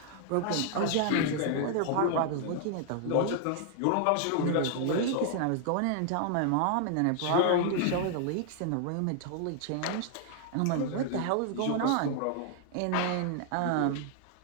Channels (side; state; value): both; different; correlation 0.00